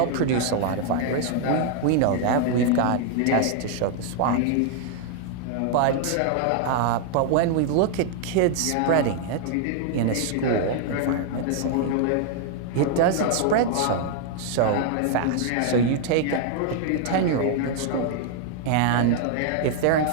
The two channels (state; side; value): different; both; correlation 0.00